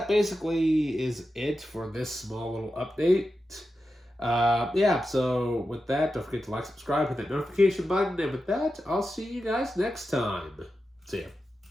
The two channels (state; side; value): normal; both; correlation 0.91